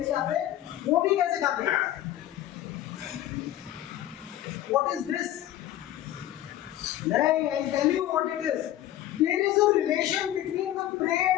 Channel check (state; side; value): quieter; right; 13.1 dB